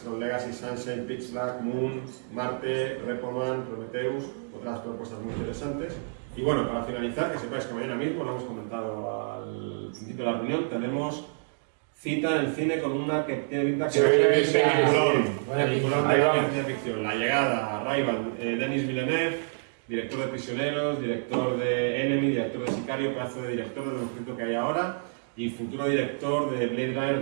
Tron Legacy, Sunshine, Pitch Black, Moon, Marte, Repo Man, Prometheus, otras propuestas muy interesantes. Y bueno, para finalizar, que sepáis que mañana mismo, lo hemos comentado al principio de la reunión, tenemos cita en el cine con una que tiene pinta que peliculón de ciencia ficción. La Llegada, Arrival, Denis Villeneuve, director de Prisioneros, director de Enemy, director de Sicario, pedazo de director de lo mejorito que hay ahora, y futuro director de Blade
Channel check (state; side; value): silent; left; digital silence